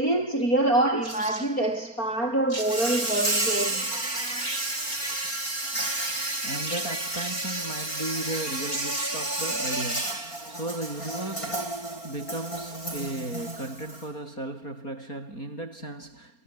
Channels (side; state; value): right; late; 4.3 ms